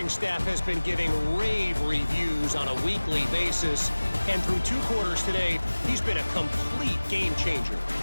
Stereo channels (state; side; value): inverted; both; correlation -1.00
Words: staff has been giving rave reviews on a weekly basis. And through 2 quarters today, he's been a complete game changer.